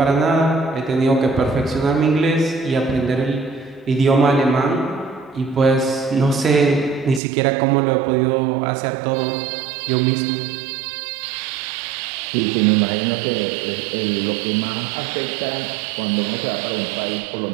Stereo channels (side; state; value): left; drops out; at 7.2 s